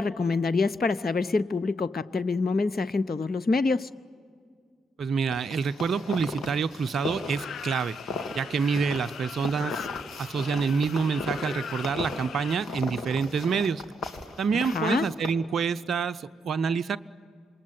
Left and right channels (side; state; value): both; normal; correlation 0.78